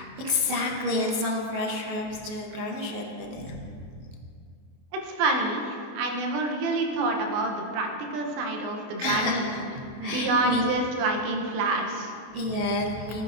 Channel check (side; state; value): left; late; 23 ms